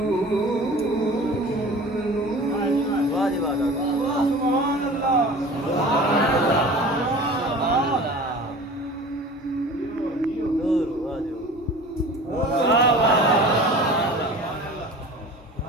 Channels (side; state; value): both; normal; correlation 0.40